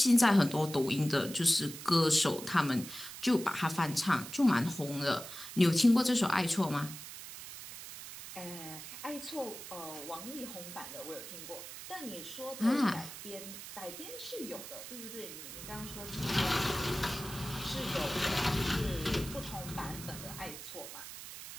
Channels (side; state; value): right; noise; hiss, 11 dB below the sound